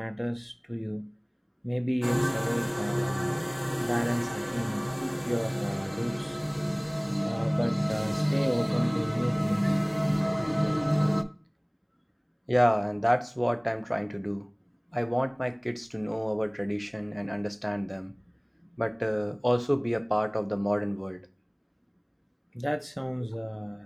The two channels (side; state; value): both; identical; correlation 1.00